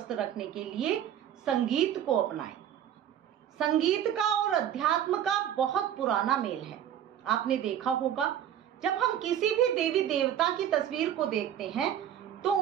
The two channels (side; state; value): left; quieter; 10.2 dB